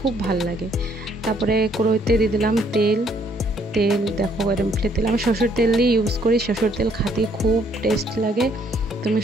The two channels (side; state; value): both; normal; correlation 0.67